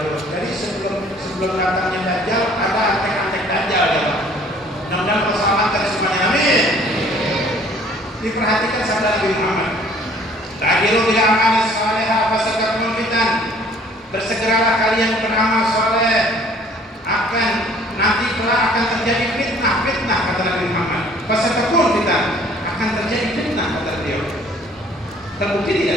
Jadi sebelum datangnya Dajjal ada antek-antek Dajjal ya Pak. Mudah-mudahan keselamatan semuanya, amin. Diperhatikan sabda Nabi Muhammad. Ta'jilu bil a'mal salihah fasatakum fitan. Bersegeralah kalian beramal soleh, nanti kelak akan terjadi fitnah kata Nabi Muhammad. Fasatakum fitan, akan terjadi fitnah kata beliau. Terbukti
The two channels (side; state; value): both; normal; correlation 0.56